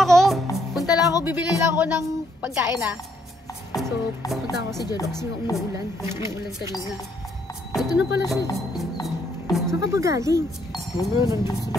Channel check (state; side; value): normal; both; correlation 0.71